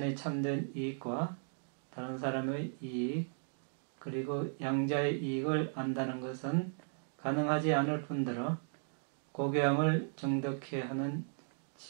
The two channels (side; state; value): left; silent; digital silence